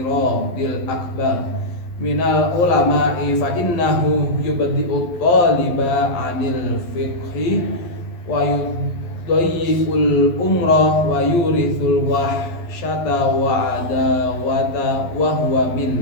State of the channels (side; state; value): right; late; 11 ms